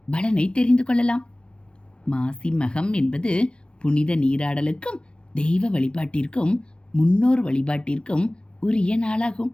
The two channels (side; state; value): right; late; 0.055 ms